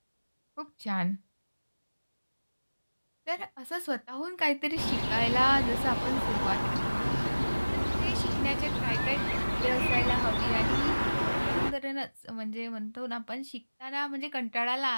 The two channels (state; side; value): inverted; both; correlation -1.00